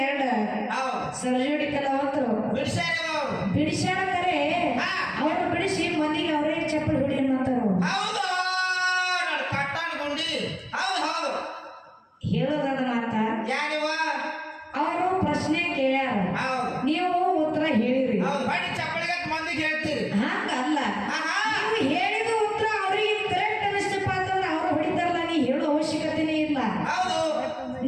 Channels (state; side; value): identical; both; correlation 1.00